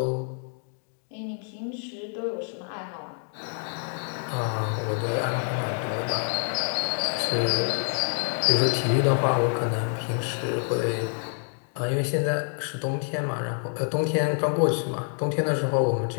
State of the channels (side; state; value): right; silent; 57 dB below the other